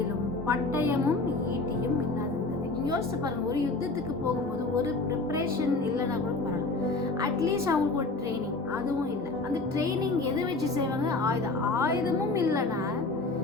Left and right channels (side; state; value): right; quieter; 3.4 dB